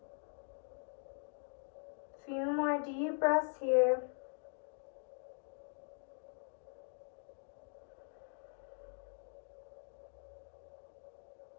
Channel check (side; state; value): right; silent; digital silence